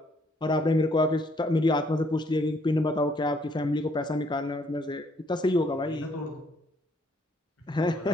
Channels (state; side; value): normal; both; correlation 0.67